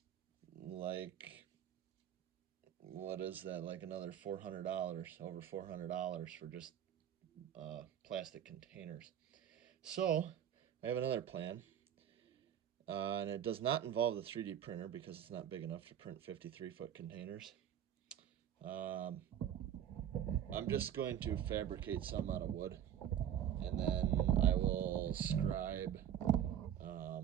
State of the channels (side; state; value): left; quieter; 9.9 dB